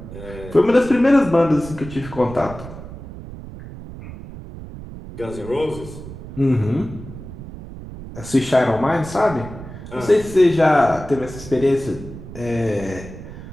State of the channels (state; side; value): noise; right; rumble, 13 dB below the sound